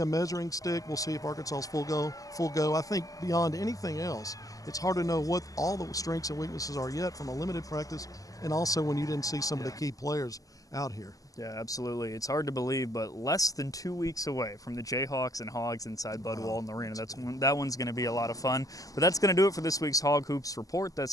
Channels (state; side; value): late; right; 0.17 ms